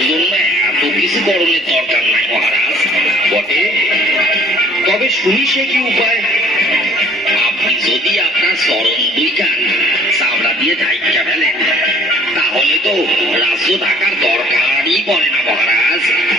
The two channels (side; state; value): both; normal; correlation 0.53